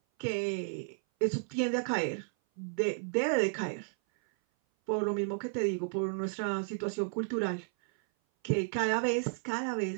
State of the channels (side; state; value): left; silent; 56 dB below the other